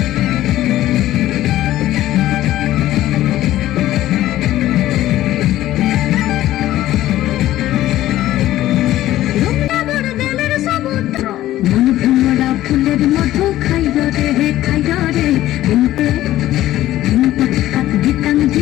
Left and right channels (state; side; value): quieter; right; 14.4 dB